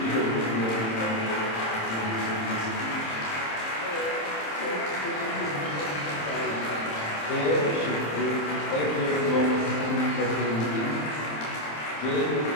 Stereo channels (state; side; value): late; right; 27 ms